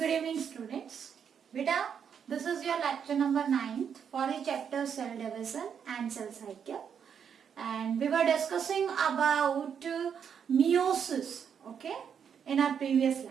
Good evening, students. Beta, this is your lecture number 9 for the chapter cell division and cell cycle. And we were discussing about meiosis, okay, in our previous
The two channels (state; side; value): quieter; left; 7.5 dB